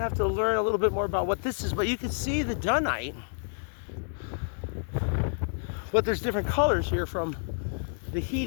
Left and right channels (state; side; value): silent; right; digital silence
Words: have to learn a little bit more about what this is, but you can see the dunite. But there's different colors here from the